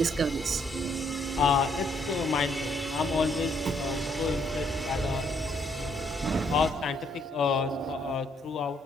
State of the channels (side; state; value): both; normal; correlation 0.70